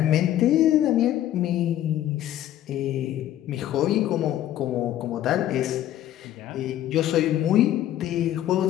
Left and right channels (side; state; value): right; quieter; 12.5 dB